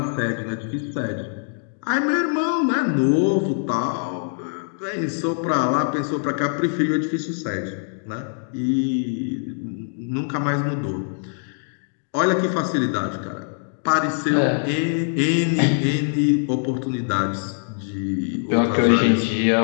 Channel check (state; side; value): silent; right; digital silence